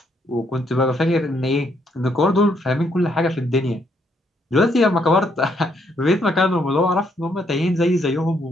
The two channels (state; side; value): normal; both; correlation 0.73